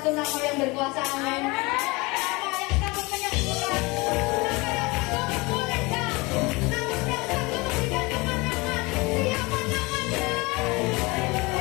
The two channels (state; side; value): quieter; right; 24.8 dB